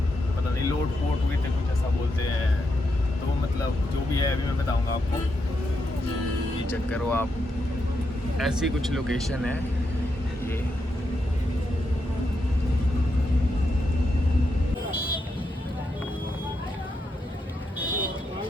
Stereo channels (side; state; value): both; normal; correlation 0.83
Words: पता नहीं लोट पोट हुए थे, कुछ ऐसा बोलते हैं। तो मतलब जो भी है अभी मैं बताऊंगा आपको। ये चेक करो आप, ऐसी कुछ लोकेशन है ये।